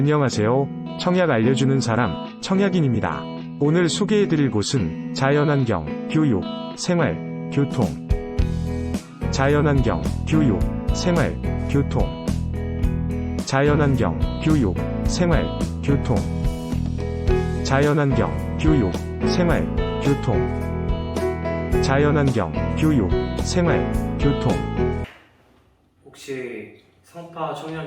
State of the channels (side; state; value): both; identical; correlation 1.00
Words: 청약 알려주는 사람, 청약인입니다. 오늘 소개해드릴 곳은 자연환경, 교육, 생활, 교통. 자연환경, 교육, 생활, 교통. 자연환경, 교육, 생활, 교통. 자연환경, 교육, 생활, 교통. 자연환경, 교육, 생활, 교통. 혹시 성파